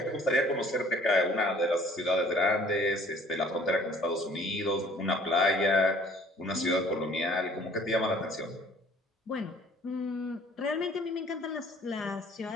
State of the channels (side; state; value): both; normal; correlation 0.55